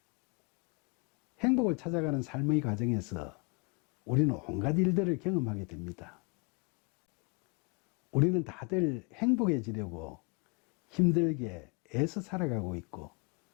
행복을 찾아가는 삶의 과정에서 우리는 온갖 일들을 경험하게 됩니다. 우리는 다들 행복해지려고 힘들게 애써 살아가고 있고,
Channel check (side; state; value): right; quieter; 33.4 dB